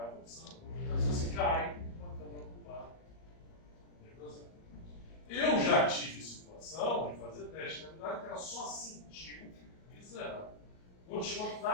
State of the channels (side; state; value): right; late; 38 ms